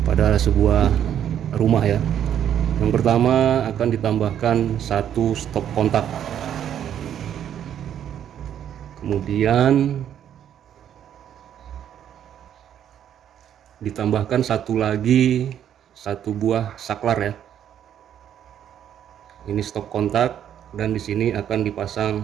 pada sebuah rumah ya. Yang pertama akan ditambahkan satu stop kontak. Kemudian ditambahkan satu buah saklar ya. Ini stop kontak dan di sini akan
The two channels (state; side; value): quieter; left; 9.9 dB